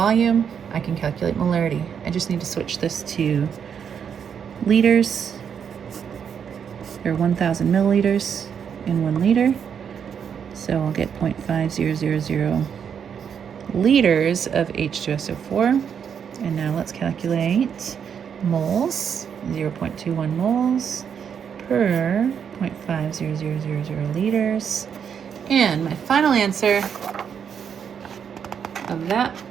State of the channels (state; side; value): quieter; left; 7.6 dB